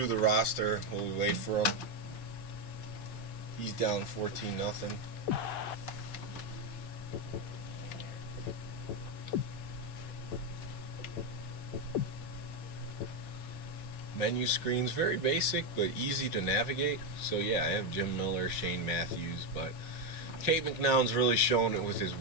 the roster while we wait for him. He's down 14-0. Menu screen's very basic but easy to navigate. So yeah, I have Jim Miller, Shane Matthews, but Kate McNown's really showing it with his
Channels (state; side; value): late; right; 5.1 ms